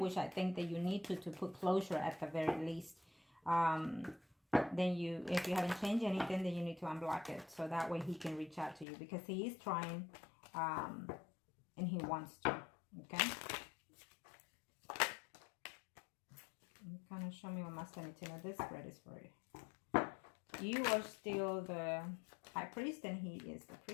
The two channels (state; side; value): drops out; right; at 8.8 s